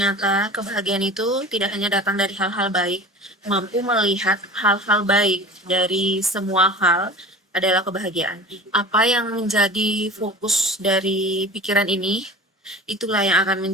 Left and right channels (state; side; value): normal; both; correlation 0.36